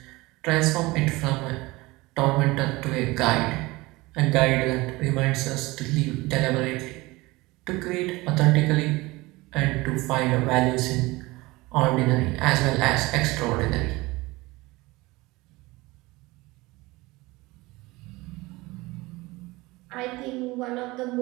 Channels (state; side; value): quieter; left; 21.6 dB